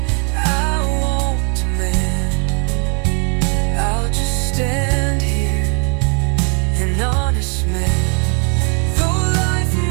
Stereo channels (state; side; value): quieter; left; 36.9 dB